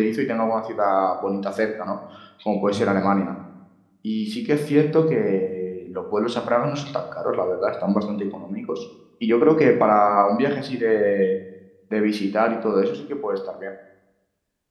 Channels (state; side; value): identical; both; correlation 1.00